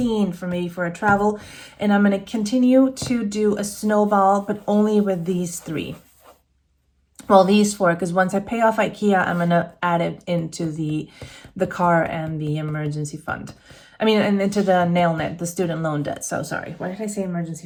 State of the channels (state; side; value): identical; both; correlation 1.00